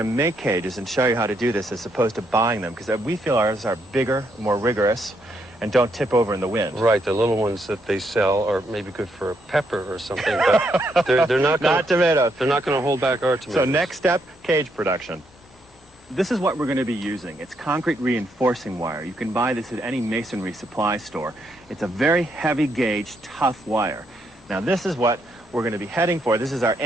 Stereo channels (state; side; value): normal; both; correlation 0.76